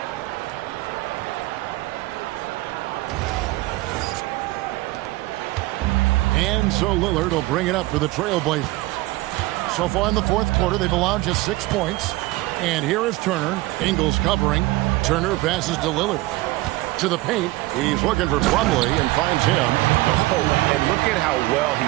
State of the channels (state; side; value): quieter; left; 19.6 dB